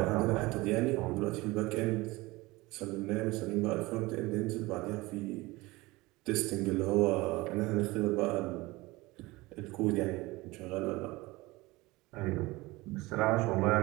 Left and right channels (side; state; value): left; quieter; 21.3 dB